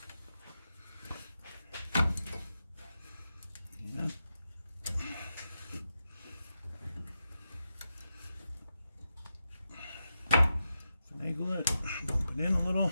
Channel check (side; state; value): both; inverted; correlation -0.88